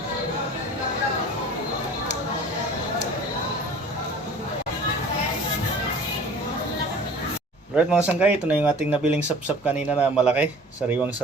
Right mga sanggay, ito na yung ating nabiling sapsap kanina na malaki, sariwang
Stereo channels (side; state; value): both; normal; correlation 0.45